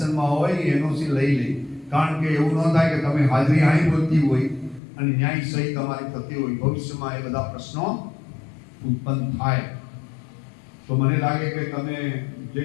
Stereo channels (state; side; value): drops out; right; at 4.8 s